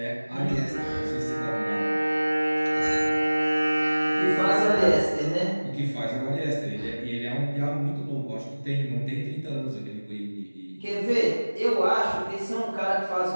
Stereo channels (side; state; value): both; inverted; correlation -1.00